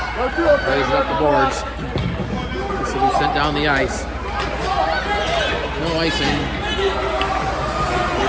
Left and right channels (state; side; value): identical; both; correlation 1.00